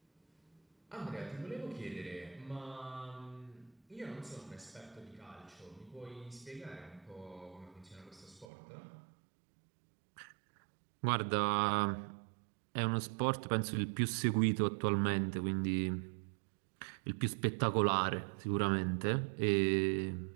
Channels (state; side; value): drops out; left; at 8.5 s